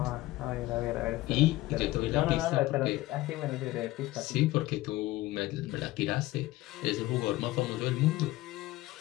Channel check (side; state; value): right; quieter; 17.9 dB